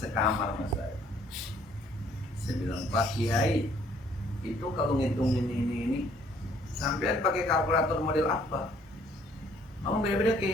sekamar mas saya bilang Pak Kiai itu kalau ngitung ini sampean pakai kalkulator model apa? Oh beda-beda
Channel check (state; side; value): normal; both; correlation 0.62